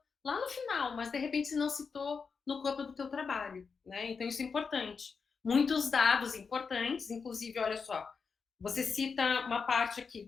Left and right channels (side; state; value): right; quieter; 5.4 dB